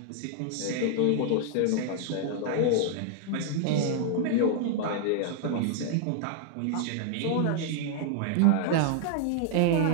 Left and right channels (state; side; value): different; both; correlation -0.01